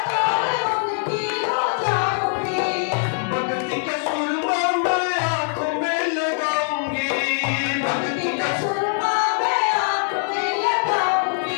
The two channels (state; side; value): silent; right; digital silence